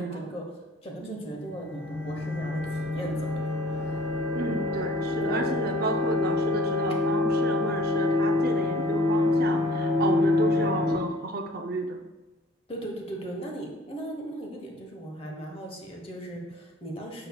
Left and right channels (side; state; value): both; normal; correlation 0.52